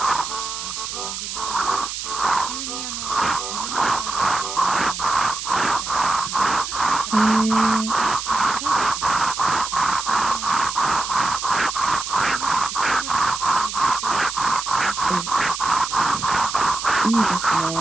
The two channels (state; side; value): noise; right; hiss, 6 dB below the sound